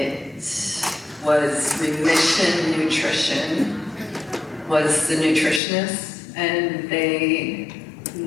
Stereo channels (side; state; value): right; drops out; at 5.6 s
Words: was Remission Nutrition was the nutritionist, and they